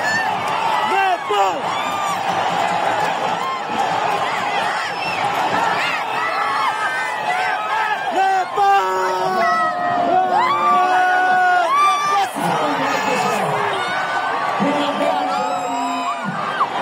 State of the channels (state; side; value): identical; both; correlation 1.00